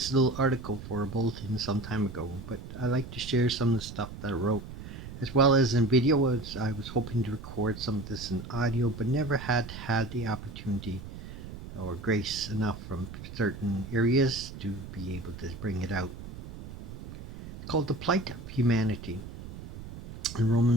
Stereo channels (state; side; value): noise; right; rumble, 12 dB below the sound